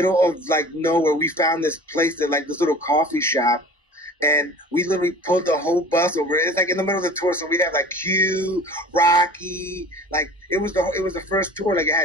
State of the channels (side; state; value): both; normal; correlation 0.42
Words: of like nowhere. We found this place that like this little coffee shop, and we literally pulled the whole bus over. It's like in the middle of the tour, so we have like Q, Rocky, like it was the first tour. Like it